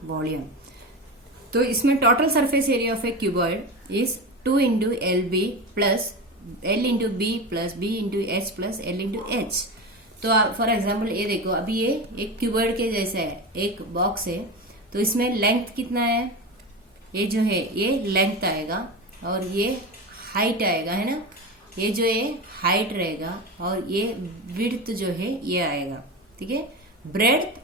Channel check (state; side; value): normal; both; correlation 0.23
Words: volume. तो इसमें total surface area of a cuboid is 2 into LB plus L into B plus B into H plus L into H. तो for example ये देखो, अभी ये एक क्यूबॉइड के जैसा है, एक बॉक्स है, तो इसमें लेंथ कितना है? ये जो है ये लेंथ आएगा और ये हाइट आएगा, है ना। ये जो है हाइट रहेगा और ये विड्थ जो है ये आएगा, ठीक है। ब्रेड्थ,